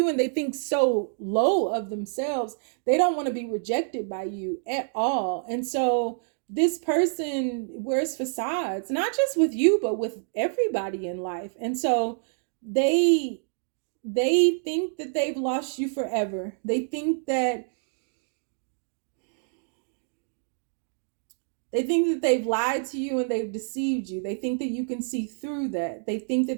and they think so low of themselves. They don't want to be rejected by you at all. And so this person wears facades, not just with you, but with everybody in life. And so they think that they've lost you forever. They think that they've lied to you and they've deceived you. They think that you can see through that. They think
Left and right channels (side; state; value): left; silent; digital silence